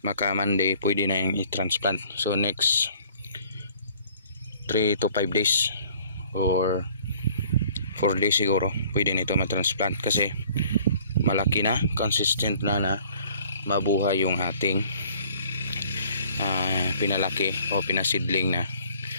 Maka Monday pwede na yung i-transplant. So next 3 to 5 days or 4 days siguro pwede nito matransplant kasi malaki na, consistent na mabuhay yung ating pinalaki o pinasidling na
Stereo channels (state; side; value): inverted; both; correlation -0.55